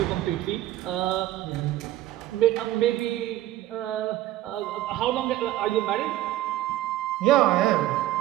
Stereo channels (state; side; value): quieter; left; 14.5 dB